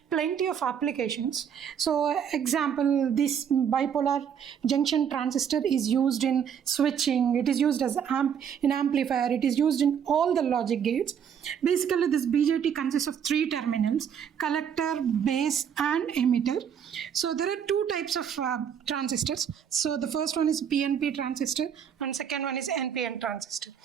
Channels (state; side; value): quieter; left; 8.1 dB